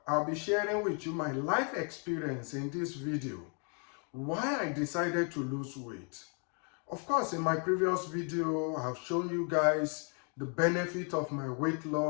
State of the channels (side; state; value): right; quieter; 39.2 dB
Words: I'll be sharing with you my life experience in this video, why I decided to lose weight. Of course, in my previous video, I've shown you guys the benefit of my weight